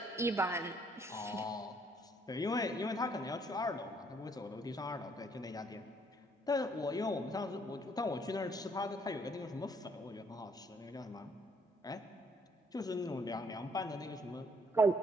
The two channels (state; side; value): normal; both; correlation 0.66